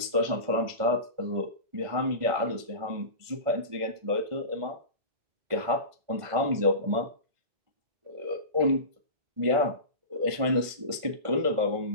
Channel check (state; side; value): late; left; 1.5 ms